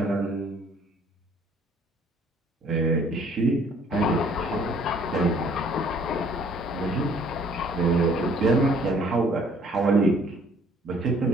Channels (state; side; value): normal; both; correlation 0.59